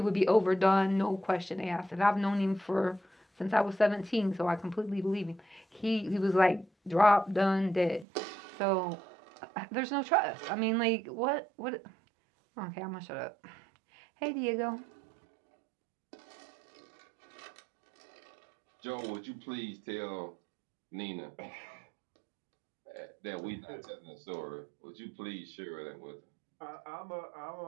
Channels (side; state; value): left; drops out; at 8.1 s